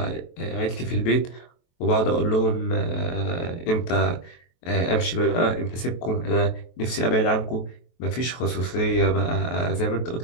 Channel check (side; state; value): right; late; 23 ms